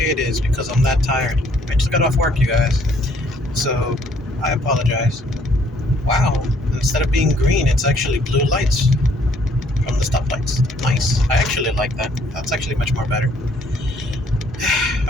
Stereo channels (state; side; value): normal; both; correlation 0.64